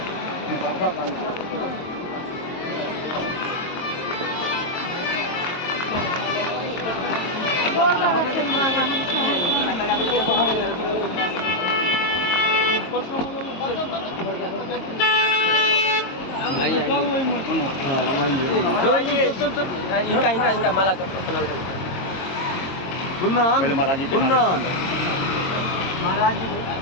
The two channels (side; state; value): right; late; 22 ms